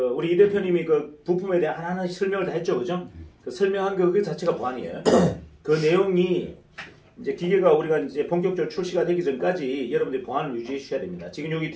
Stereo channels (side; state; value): both; identical; correlation 1.00